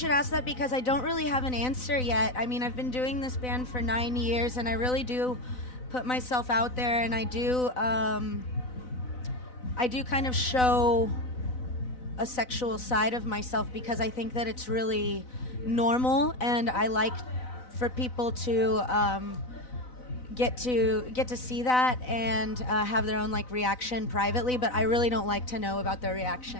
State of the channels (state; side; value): late; right; 4.0 ms